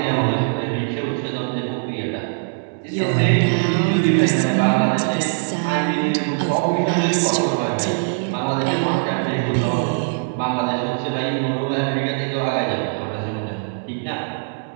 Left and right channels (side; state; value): left; silent; 64 dB below the other